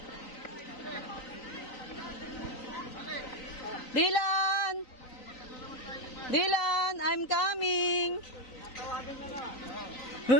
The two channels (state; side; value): late; right; 3.9 ms